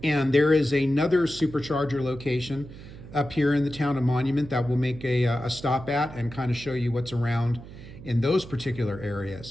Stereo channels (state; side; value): noise; right; hum, 15 dB below the sound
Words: And there is another Supercharger location up here in the town of Monument that we'll make a stop at and kind of show you what's around in those particular